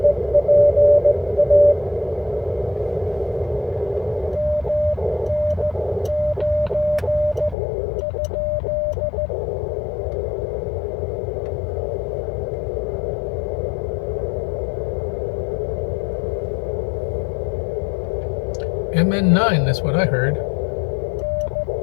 MN9, that's what I heard.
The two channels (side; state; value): right; drops out; at 7.6 s